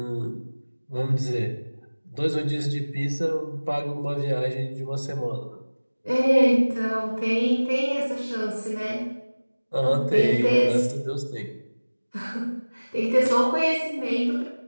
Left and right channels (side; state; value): both; inverted; correlation -1.00